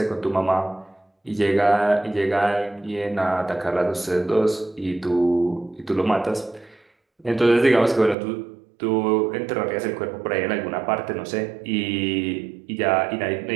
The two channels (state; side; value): drops out; left; at 8.2 s